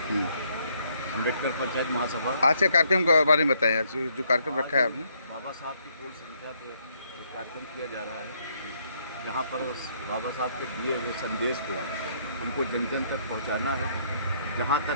अम्बेडकर पंचायत महासभा। आज के कार्यक्रम के बारे में बताएं। आज जो कार्यक्रम रखा है आपने, बाबा साहब की पूर्ण संख्या पे एक कार्यक्रम किया जा रहा है, जहाँ पर बाबा साहब के दिए हुए संदेश को हमको जन जन तक पहुँचाना है। जहाँ तक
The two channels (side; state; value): both; inverted; correlation -0.70